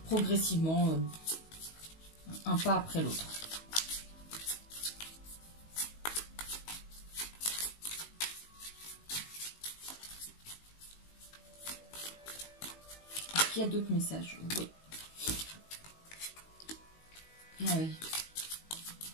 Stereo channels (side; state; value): right; late; 19 ms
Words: progressivement, un pas après l'autre. Il y a d'autres messages, oui. Ah oui.